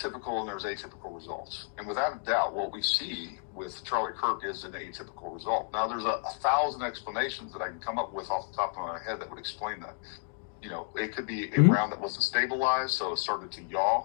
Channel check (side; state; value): right; silent; 57 dB below the other